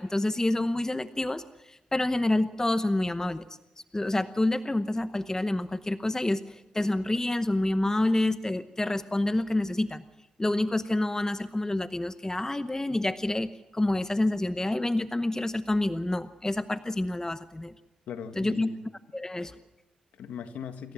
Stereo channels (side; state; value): both; normal; correlation 0.98